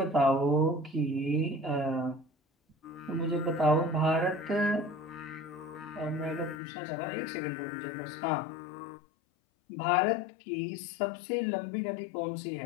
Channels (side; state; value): right; drops out; at 6.6 s